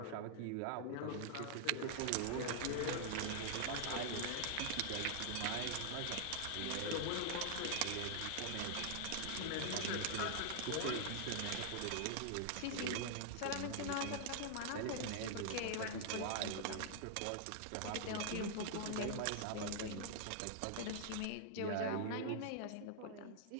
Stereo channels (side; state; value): both; different; correlation -0.01